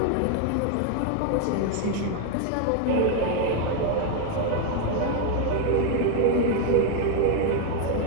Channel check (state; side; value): different; both; correlation 0.01